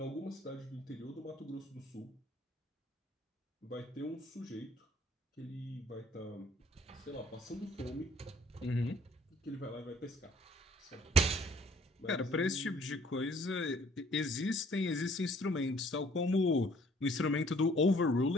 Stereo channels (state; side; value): normal; both; correlation 0.58